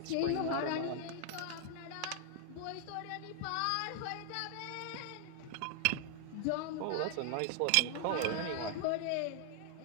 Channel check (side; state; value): both; different; correlation 0.00